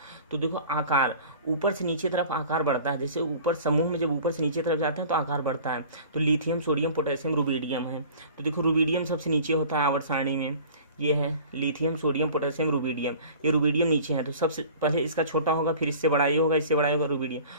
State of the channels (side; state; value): both; inverted; correlation -0.44